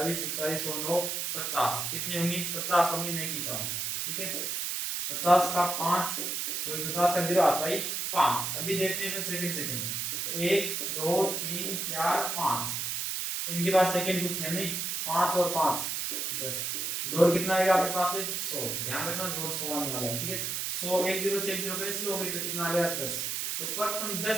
41 और 9 50, कितने होंगे 50 होंगे, नहीं की कम, ठीक है। 50 का 5 सॉरी 50 का 0 आता है 5। अभी देखते हैं सेकंड 1 2 3 4 5, इनके पास सेकंड कुछ है नहीं, 5 और 5 10, जोड़ कितना आएगा आपके पास है 100, ध्यान रखना जोड़ 100 आने वाला है, ठीक है। 100 एक 0 से 1 0 कैंसिल हो गई तो कितना आ गया 10। तो प्रथम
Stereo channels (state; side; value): noise; right; hiss, 2 dB below the sound